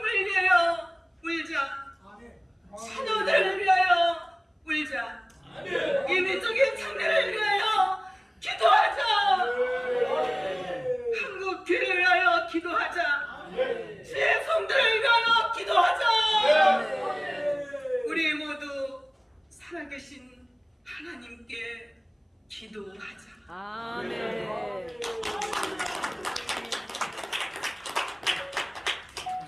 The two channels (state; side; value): identical; both; correlation 1.00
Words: 위하여 울자. 자녀들을 위하여 울자. 이민족의 장래를 위하여 기도하자. 한국 교회를 위하여 기도하자. 주의 성도를 위하여 기도하자. 우리 모두 살아계신 하나님께 기도하자. 아멘.